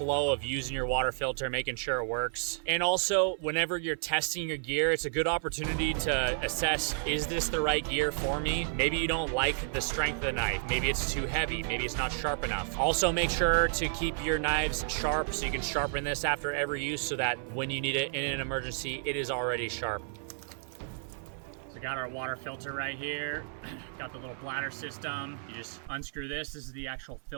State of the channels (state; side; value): silent; left; 57 dB below the other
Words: of using your water filter, making sure it works. And also, whenever you're testing your gear, it's a good opportunity to assess, is this the right gear for me? Maybe you don't like the strength of the knife. Maybe it's too heavy. Maybe it's not sharp enough. Also, make sure to keep your knives sharp so you can sharpen this after every use so that when you need it in an emergency, it is already sharp. So got our water filter right here. Got the little bladder system. You just unscrew this. This is the actual